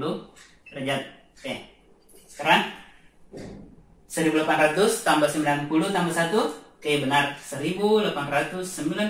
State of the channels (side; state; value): both; identical; correlation 1.00